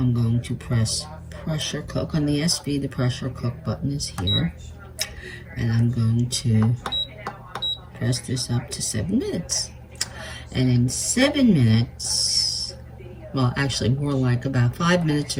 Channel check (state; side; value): identical; both; correlation 1.00